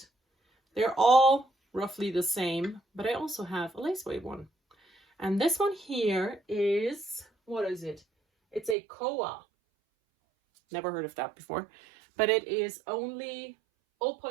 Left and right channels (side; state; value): left; drops out; at 8.8 s